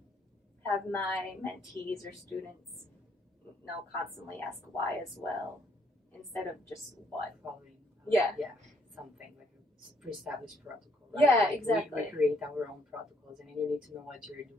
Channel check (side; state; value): both; normal; correlation 0.69